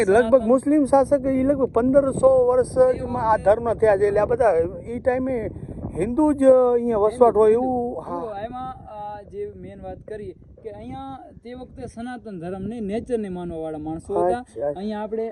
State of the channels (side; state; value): both; identical; correlation 1.00